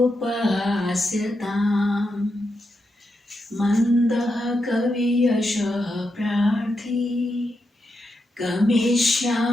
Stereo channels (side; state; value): both; normal; correlation 0.85